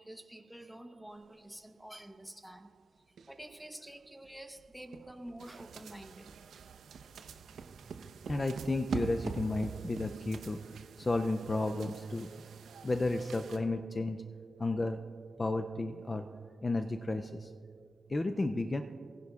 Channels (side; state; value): both; normal; correlation 0.93